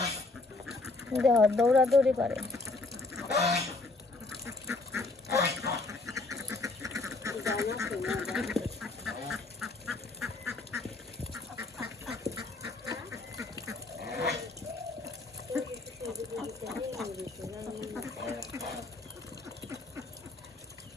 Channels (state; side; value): quieter; right; 3.4 dB